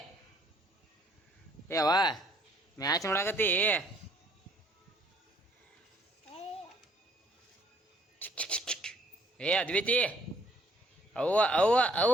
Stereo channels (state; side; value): normal; both; correlation 0.63